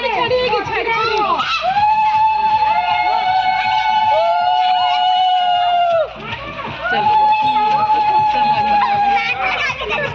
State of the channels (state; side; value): identical; both; correlation 1.00